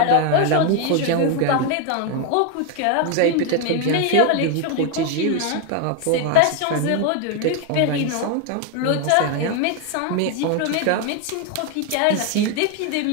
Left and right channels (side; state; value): both; different; correlation 0.01